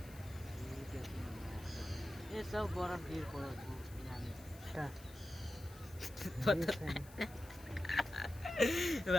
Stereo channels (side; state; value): left; noise; hiss, 20 dB below the sound